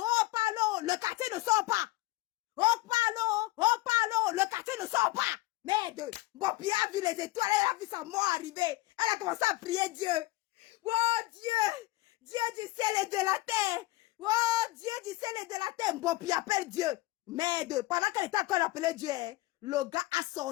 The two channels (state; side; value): quieter; right; 19.1 dB